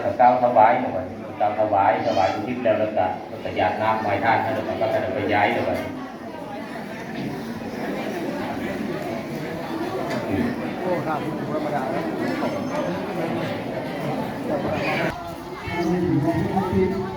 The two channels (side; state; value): both; identical; correlation 1.00